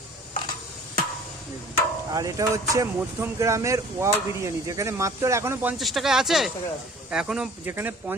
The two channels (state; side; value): normal; both; correlation 0.48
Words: আর এটা হচ্ছে মধ্যম গ্রামের ওয়াও বিরিয়ানি, যেখানে মাত্র এখনো 50 টাকায় আছে। এখনো যেখানে